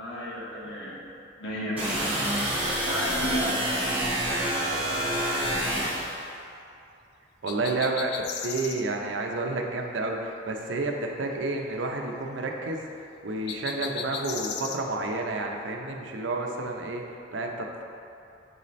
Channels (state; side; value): normal; both; correlation 0.14